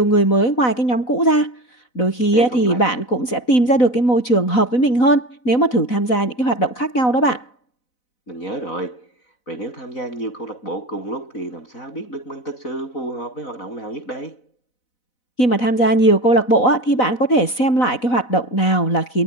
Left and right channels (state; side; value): late; right; 4.0 ms